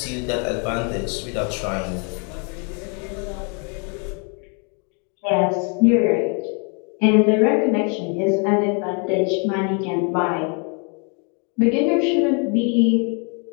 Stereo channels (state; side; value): quieter; right; 37.1 dB